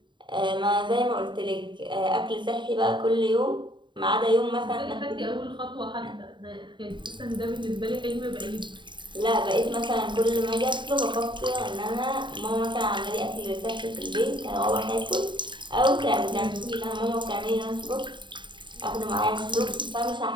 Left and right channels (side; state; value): left; late; 0.23 ms